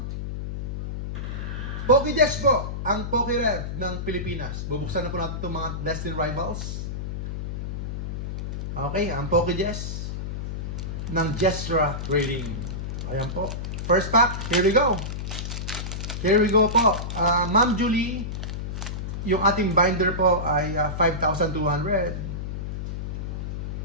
PokeJess po ang PokeRev ng Pilipinas. Bubuksan na po natin itong mga Destined Rivals. Okay, ang PokeJess ng Jestra Trading. Ayan po. First pack, here we go. Here we go po. Ma'am Julie, yung ating binder po ay 5,200.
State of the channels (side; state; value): left; noise; hum, 5 dB below the sound